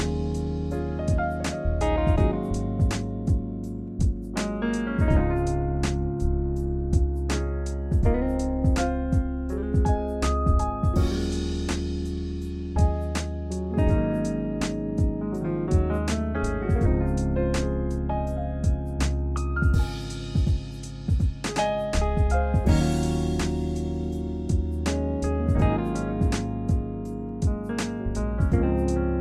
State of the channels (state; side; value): identical; both; correlation 1.00